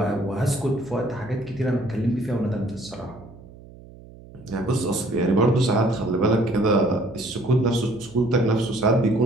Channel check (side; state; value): right; noise; hum, 20 dB below the sound